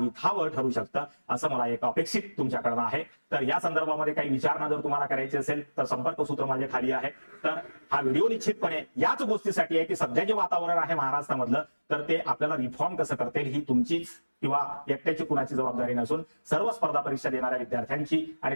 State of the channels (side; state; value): both; inverted; correlation -1.00